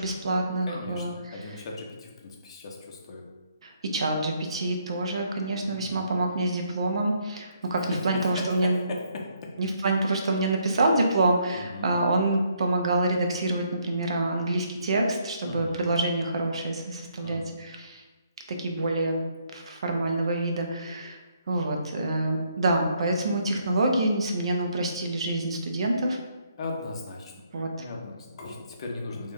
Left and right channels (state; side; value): inverted; both; correlation -0.70